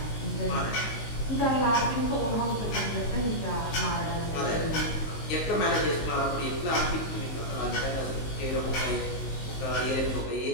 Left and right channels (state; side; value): late; right; 19 ms